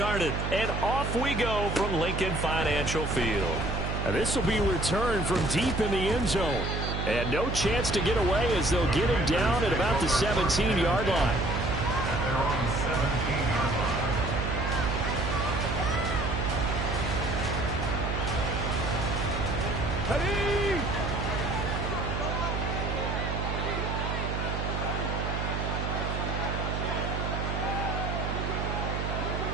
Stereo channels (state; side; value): noise; right; hum, 2 dB below the sound